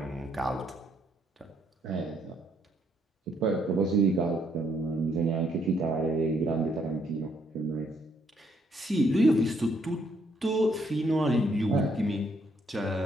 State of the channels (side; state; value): both; normal; correlation 0.71